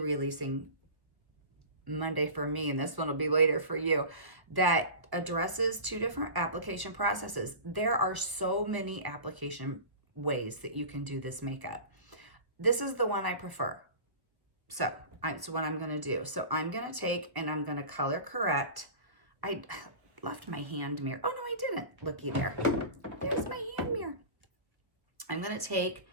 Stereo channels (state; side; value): late; left; 1.3 ms